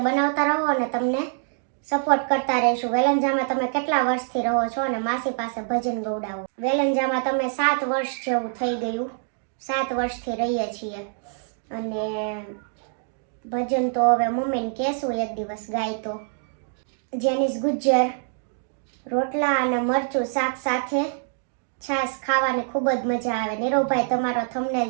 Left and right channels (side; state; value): left; silent; 61 dB below the other